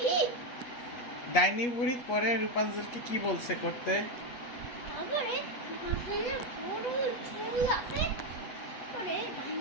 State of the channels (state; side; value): late; right; 8.3 ms